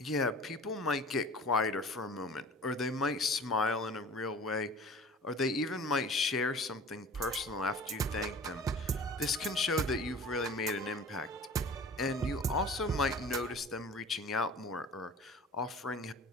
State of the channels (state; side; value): normal; both; correlation 0.42